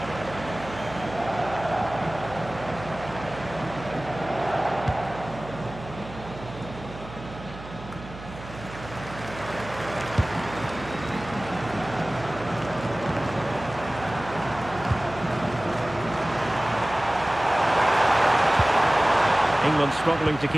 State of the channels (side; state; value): right; noise; hum, 14 dB below the sound